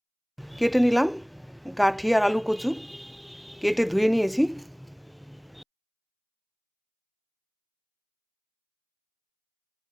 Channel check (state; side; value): identical; both; correlation 1.00